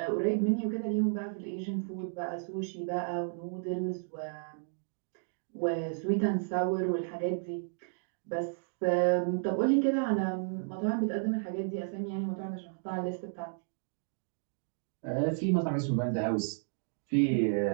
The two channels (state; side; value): silent; left; digital silence